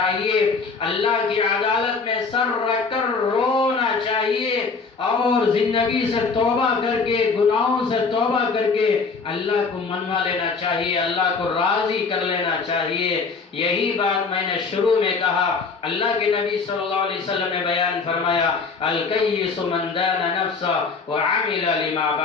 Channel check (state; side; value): quieter; right; 4.7 dB